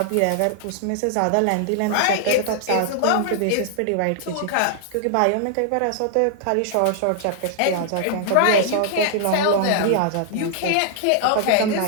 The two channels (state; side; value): different; both; correlation -0.01